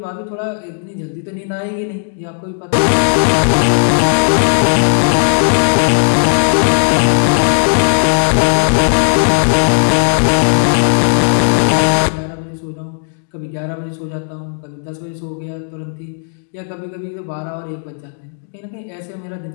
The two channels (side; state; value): right; silent; digital silence